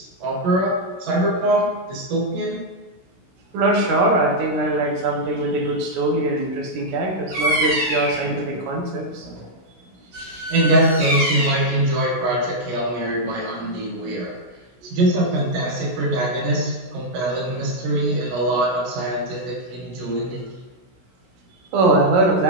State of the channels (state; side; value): late; left; 16 ms